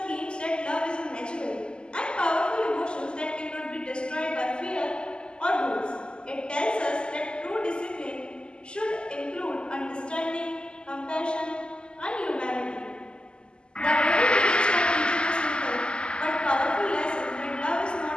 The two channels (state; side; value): late; right; 0.049 ms